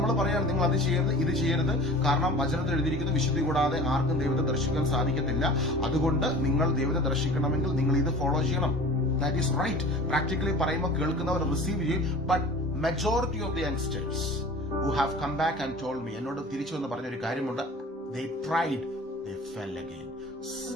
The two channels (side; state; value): both; normal; correlation 0.41